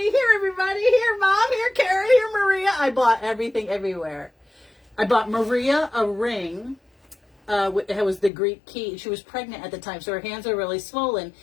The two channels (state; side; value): drops out; right; at 8.3 s